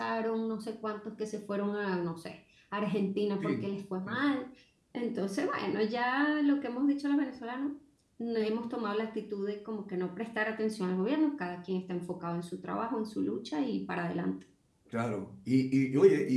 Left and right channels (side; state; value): both; identical; correlation 1.00